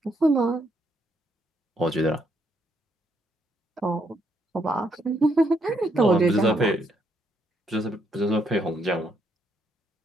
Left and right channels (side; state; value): both; normal; correlation 0.74